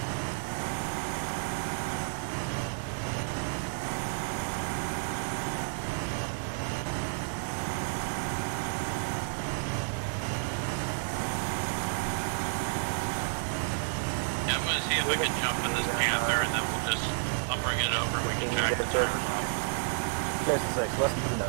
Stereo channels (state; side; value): silent; left; digital silence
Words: Yeah, I'm gonna see if I can jump in this Panther and then we'll just, I'll bring it over and we can jack the tires off. Saracen 6, less than 3